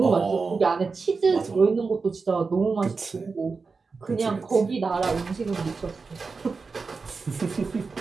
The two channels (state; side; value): quieter; left; 4.5 dB